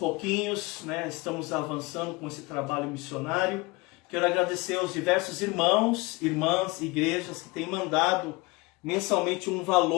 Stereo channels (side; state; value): right; quieter; 24.3 dB